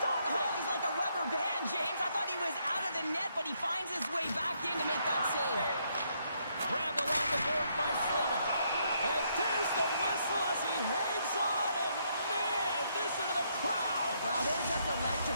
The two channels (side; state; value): both; inverted; correlation -0.73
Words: it! Oh, he's like a rubber band, James. I thought he was out of the net, but he finds his way back in to make that save. Grabbed along the board by Slavin. And there's the whistle as he hangs on, and man, listen to the crowd. Wow, they're just electric.